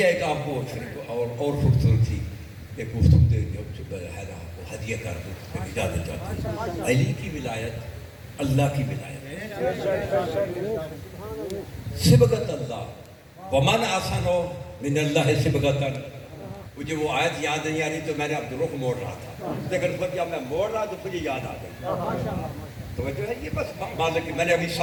ہے کہ آپ کو اور خوبصورتی ایک گفتگو دے جو ہے نا وہ ہدیہ کر دوں, اجازت چاہتا ہوں. علی کی ولایت اللہ کی ولایت, صبغۃ اللہ. ومن احسن من اللہ صبغۃ. مجھے وہ آیت یاد نہیں آ رہی تو میں نے اب رخ موڑ رہا تھا, لیکن جب میں موڑ رہا تو مجھے یاد آ گئی. تو جو ہے یہ بس مالک میں نے ابھی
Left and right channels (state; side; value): identical; both; correlation 1.00